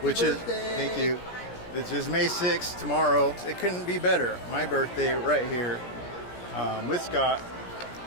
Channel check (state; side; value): late; right; 16 ms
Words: which birthday. is, thank you, which is May 6th, tomorrow. It couldn't be better. My birthday right here with Scott.